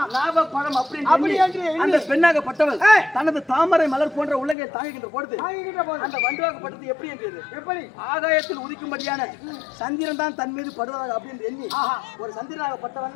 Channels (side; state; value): right; drops out; at 4.5 s